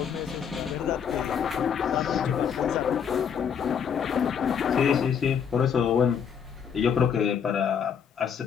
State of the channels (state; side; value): quieter; right; 7.5 dB